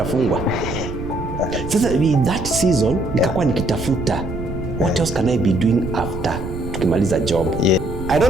Sasa that season nikakuwa nikitafuta what else can I be doing after tukimaliza job. I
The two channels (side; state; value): right; noise; rumble, 8 dB below the sound